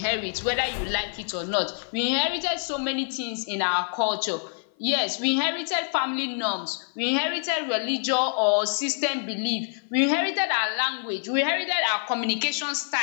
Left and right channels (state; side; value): silent; right; 55 dB below the other